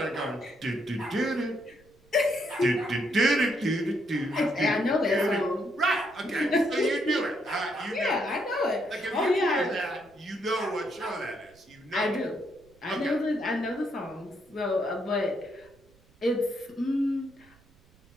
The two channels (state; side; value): noise; right; rumble, 30 dB below the sound